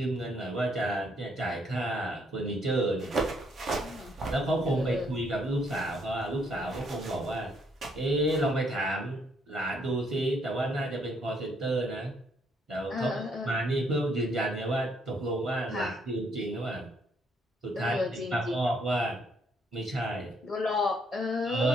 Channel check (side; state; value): both; normal; correlation 0.70